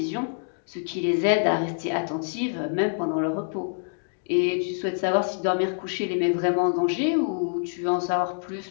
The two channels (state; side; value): silent; right; digital silence